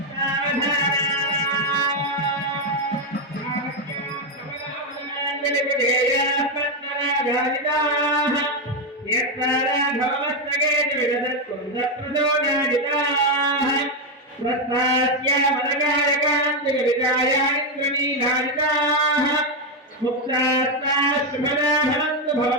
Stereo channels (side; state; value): both; normal; correlation 0.05